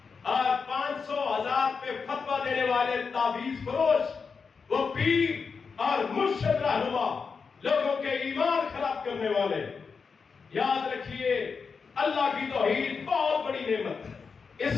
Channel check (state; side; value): quieter; right; 5.3 dB